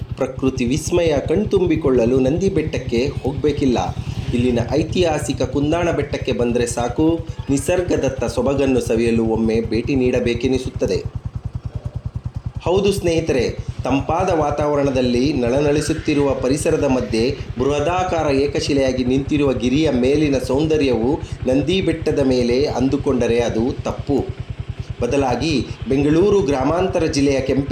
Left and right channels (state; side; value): identical; both; correlation 1.00